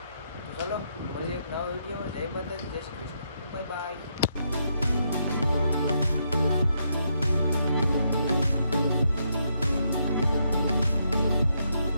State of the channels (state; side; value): inverted; both; correlation -0.78